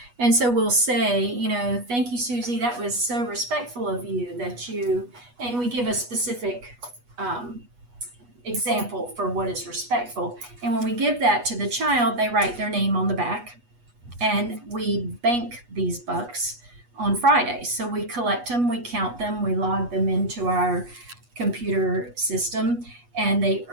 And so we'll say, thank you, Susie. That was so respectful of you and we give a specific example for what is respectful. And when we give that to the child, they write their name on the back, and we bank these bucks on Friday. So we collect them, we count them, we log them into our computer system, and they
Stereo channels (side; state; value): left; late; 8.2 ms